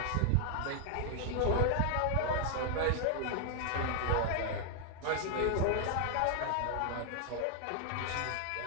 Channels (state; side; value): different; both; correlation 0.00